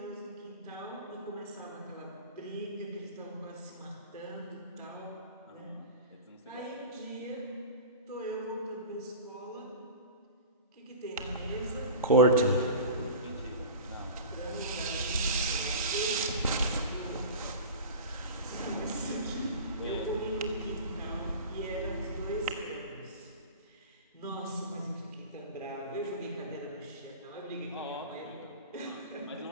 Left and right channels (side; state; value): both; inverted; correlation -0.33